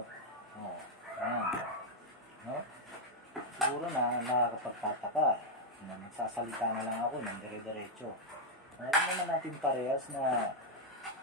Ayan. No? Siguro na nakakapagtataka na nagsasalita na lang ako ng dire-diretso. Alam naman natin parehas na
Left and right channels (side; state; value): both; normal; correlation 0.00